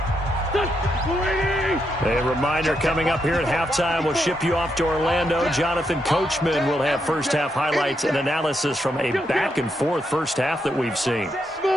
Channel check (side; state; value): both; normal; correlation 0.81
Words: A reminder coming up here at halftime. We'll ship you off to Orlando. Jonathan Coachman will have first half highlights and analysis from a back and forth first half that we've seen.